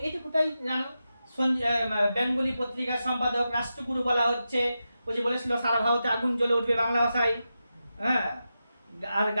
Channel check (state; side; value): inverted; both; correlation -0.90